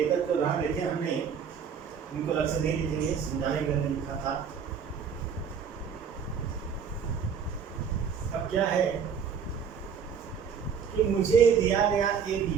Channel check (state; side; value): quieter; left; 6.9 dB